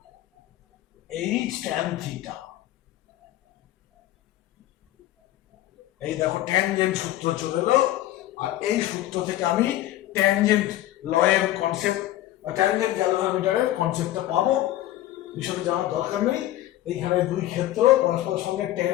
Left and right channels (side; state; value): right; quieter; 14.5 dB